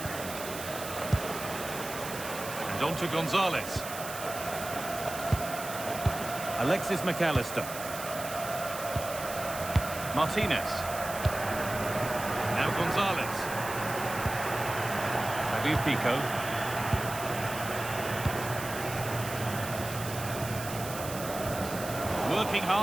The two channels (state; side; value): noise; right; hiss, 10 dB below the sound